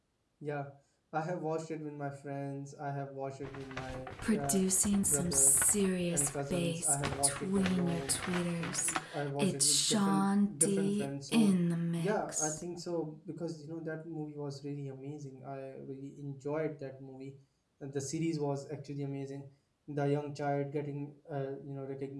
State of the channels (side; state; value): both; identical; correlation 1.00